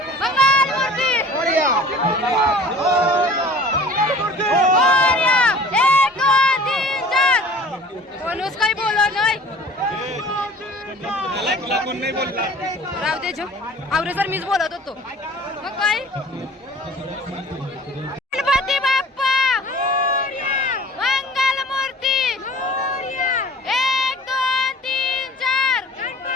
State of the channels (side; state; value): both; normal; correlation 0.46